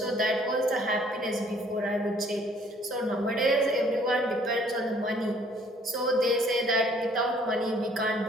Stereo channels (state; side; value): normal; both; correlation 0.60